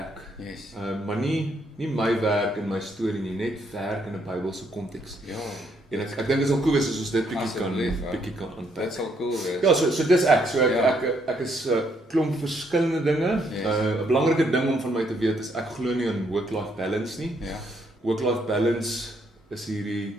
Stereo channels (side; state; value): both; normal; correlation 0.72